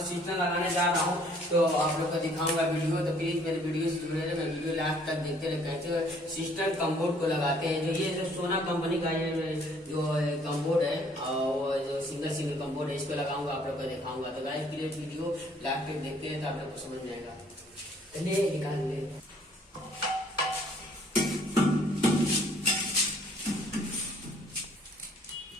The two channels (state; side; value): normal; both; correlation 0.60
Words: सिस्टम लगाने जा रहा हूँ, तो आप लोग को दिखाऊंगा वीडियो। तो प्लीज मेरे वीडियो से जुड़े रहे, मैं वीडियो लास्ट तक देखते रहे कैसे सिस्टम कम्बोर्ड को लगाते हैं। जो ये जो सोना कंपनी का ये जो कम्बोर्ड है, वो जो सिंगल कम्बोर्ड है, इसको लगाऊंगा, आप लोग को दिखाऊंगा। तो गाइस प्लीज वीडियो लास्ट तक देखते हैं, तो आप लोग को समझ जाएगा। चलिए निकाल ले।